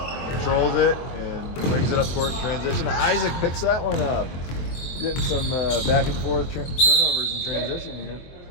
controls it, and brings it up court in transition. Isaac picks that one up. Getting some back and forth turnovers in transition here.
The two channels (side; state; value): right; late; 23 ms